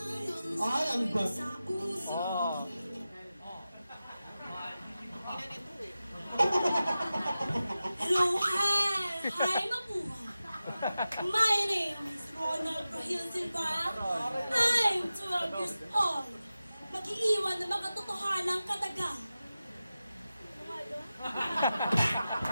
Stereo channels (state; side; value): inverted; both; correlation -0.94